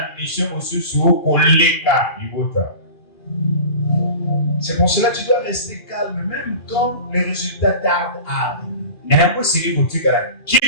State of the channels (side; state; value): right; late; 2.4 ms